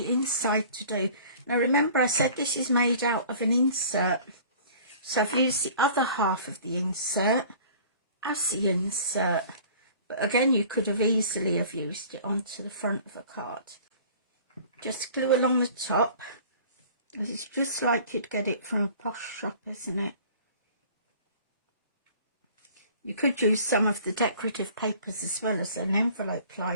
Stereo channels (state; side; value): inverted; both; correlation -0.47